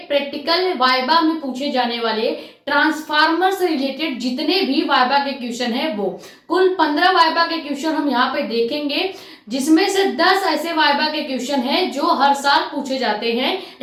प्रैक्टिकल वाइबा में पूछे जाने वाले ट्रांसफार्मर से रिलेटेड जितने भी वाइबा के क्वेश्चन है वो कुल 15 वाइबा के क्वेश्चन हम यहाँ पे देखेंगे, जिसमें से 10 ऐसे वाइबा के क्वेश्चन हैं जो हर साल पूछे जाते हैं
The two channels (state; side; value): identical; both; correlation 1.00